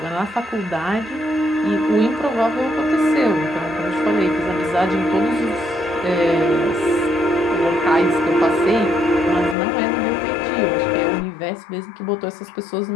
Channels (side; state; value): right; drops out; at 9.6 s